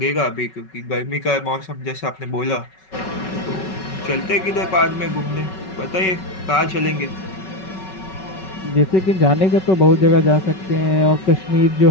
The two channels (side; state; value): right; late; 5.3 ms